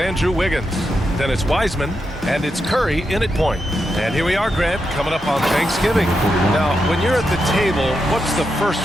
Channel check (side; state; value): both; normal; correlation 0.85